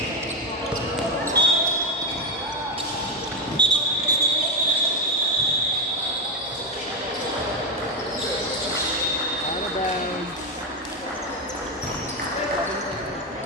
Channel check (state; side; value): normal; both; correlation 0.09